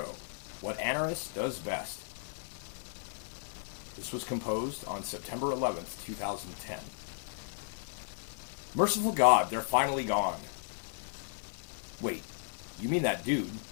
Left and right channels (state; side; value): silent; right; 55 dB below the other